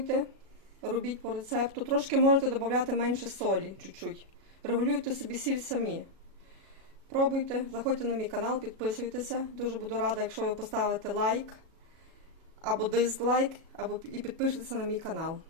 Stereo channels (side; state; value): left; late; 37 ms